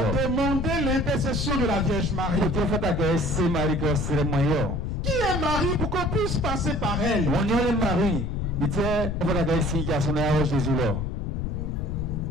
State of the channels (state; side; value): noise; left; rumble, 2 dB below the sound